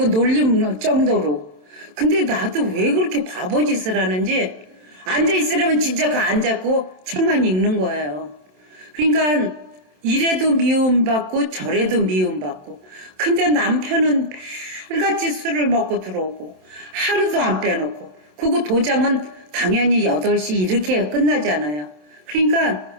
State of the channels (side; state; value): left; late; 27 ms